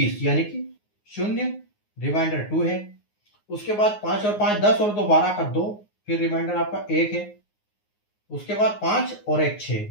यानी कि शून्य, रिमाइंडर 2 है। उसके बाद 5 और 5 10 और 2 12 का 2, फिर रिमाइंडर आपका 1 है। उसके बाद 5 और 1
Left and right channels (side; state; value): right; late; 9.6 ms